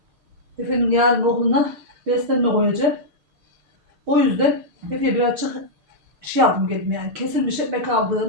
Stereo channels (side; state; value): left; late; 6.6 ms